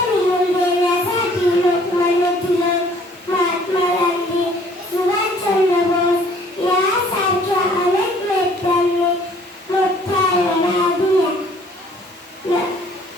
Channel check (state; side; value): normal; both; correlation 0.57